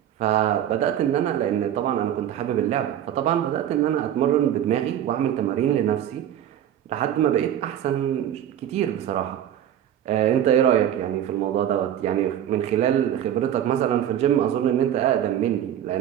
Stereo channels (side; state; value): left; quieter; 10.7 dB